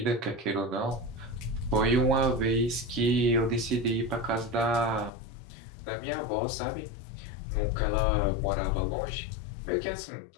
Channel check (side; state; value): right; drops out; at 5.1 s